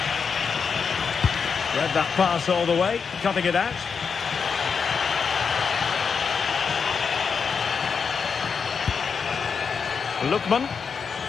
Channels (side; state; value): right; quieter; 5.9 dB